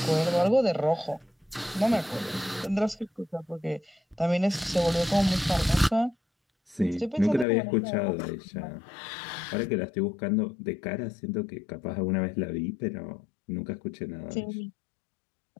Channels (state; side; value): drops out; right; at 7.5 s